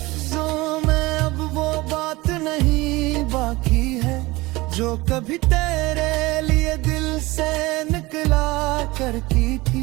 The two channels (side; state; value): left; quieter; 21.3 dB